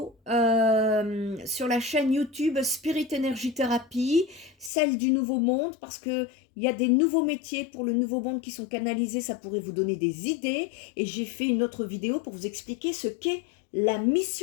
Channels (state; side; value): drops out; right; at 4.7 s